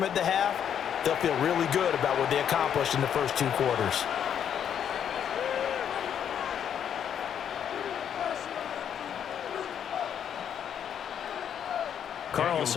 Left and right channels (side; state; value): right; quieter; 8.8 dB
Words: at the half, they'll feel really good about what they accomplished in the first 2 quarters.